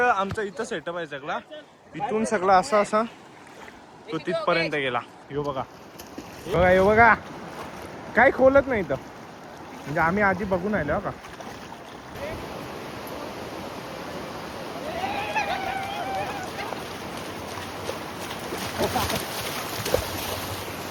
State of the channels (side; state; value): both; identical; correlation 1.00